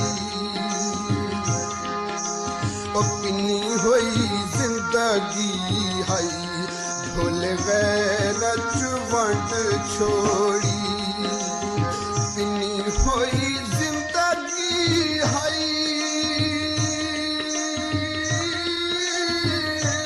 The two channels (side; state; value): both; identical; correlation 1.00